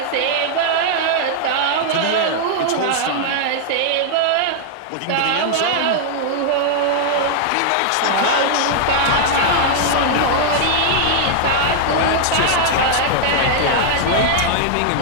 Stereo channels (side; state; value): both; different; correlation -0.01